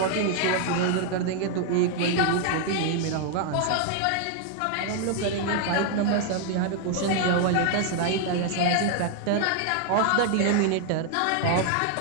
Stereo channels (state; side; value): different; both; correlation 0.00